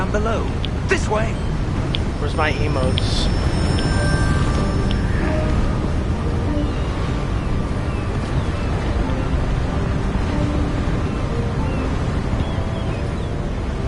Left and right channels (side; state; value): both; identical; correlation 1.00